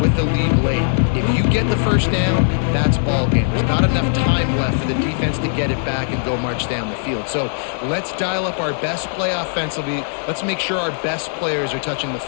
with the lead late. If you get the first down, that's ball game. There's not enough time left for the defense to get it back and go march down the field. So let's dial up our best play offensively. Let's make sure our best players are touching the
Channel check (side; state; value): right; silent; digital silence